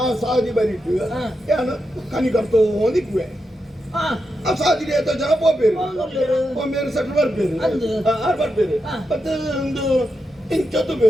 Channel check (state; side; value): normal; both; correlation 0.86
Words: ಸಾದಿ ಬರಿಟ್ಟು ಹಾ. ಏನು ಕನಿ ಕರ್ತೋ ಒಂದಿಕ್ವೆ ಆ ಆ ಸಾದಿ ರೇತ ಜನ ಪೋಪೇರು ಹೋಗ್ಲಿರು. ಒಮ್ಮೆರು ಸೆಟ್ಲ್ ಬರ್ಬೇರು ಅಂದು. ಆರು ಬರ್ಬೇರು ಹಾ. ಮತ್ತೆ ಒಂದು ಇಂಚತ್ತು